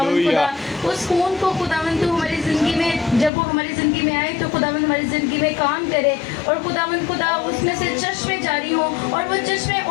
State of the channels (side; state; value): right; drops out; at 3.3 s